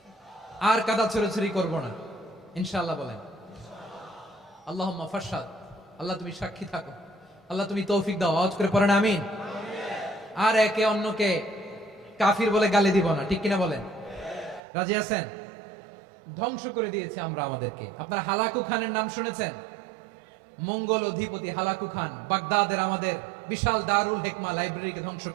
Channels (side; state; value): left; drops out; at 14.6 s